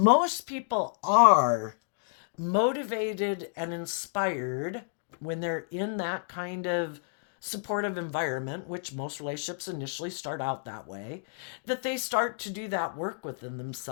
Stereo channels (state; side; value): silent; right; digital silence